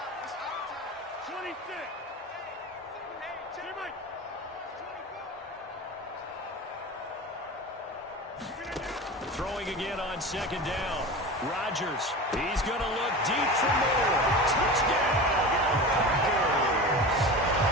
Throwing again on second down. Rodgers, he's going to look deep for Moore. Touchdown, Packers.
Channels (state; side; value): normal; both; correlation 0.31